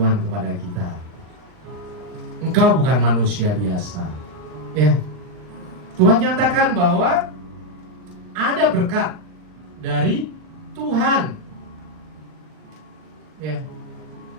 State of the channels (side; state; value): left; late; 39 ms